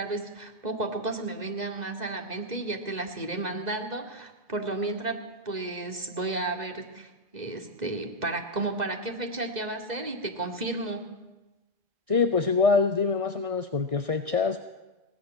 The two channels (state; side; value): late; left; 2.0 ms